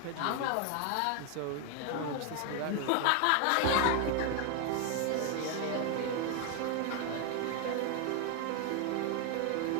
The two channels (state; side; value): different; both; correlation 0.01